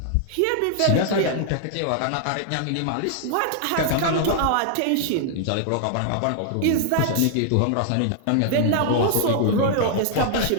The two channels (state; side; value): different; both; correlation 0.00